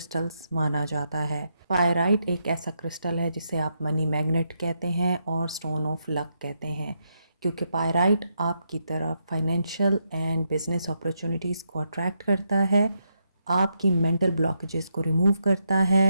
माना जाता है। पायराइट एक ऐसा क्रिस्टल है जिसे आप मनी मैग्नेट कहते हैं और स्टोन ऑफ लक कहते हैं, क्योंकि पायराइट आपकी तरफ फाइनेंशियल एंड बिजनेस अपॉर्चुनिटीज़ को अट्रैक्ट करता है, आपकी मेंटल ब्लॉकेजेस को रिमूव करता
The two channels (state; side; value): inverted; both; correlation -0.81